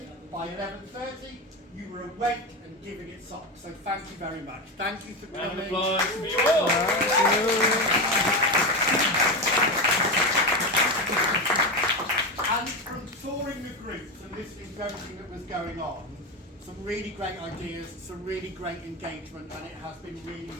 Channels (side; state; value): both; normal; correlation 0.17